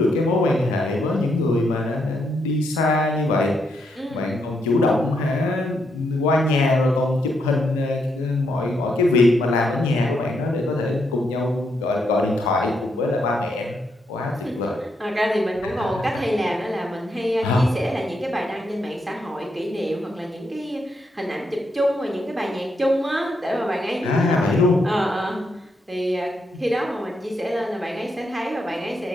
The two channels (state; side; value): normal; both; correlation 0.79